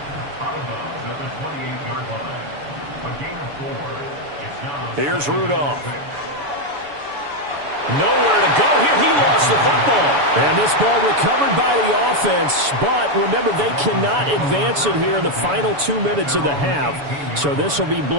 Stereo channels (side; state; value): left; late; 7.0 ms